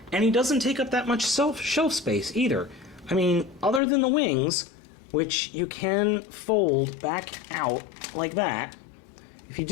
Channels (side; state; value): right; drops out; at 3.8 s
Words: And he doesn't take up that much shelf space either. I mean, other than the wings, which you can fold back out like that. If you